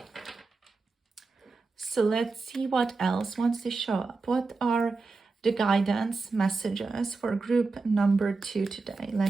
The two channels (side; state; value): left; quieter; 4.0 dB